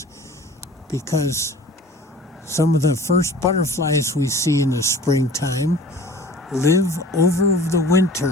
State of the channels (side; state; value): both; normal; correlation 0.45